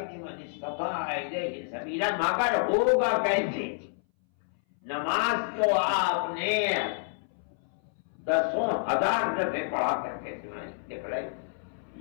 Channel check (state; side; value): silent; right; 59 dB below the other